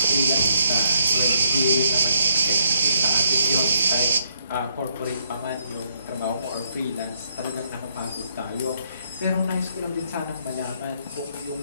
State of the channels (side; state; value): both; inverted; correlation -0.72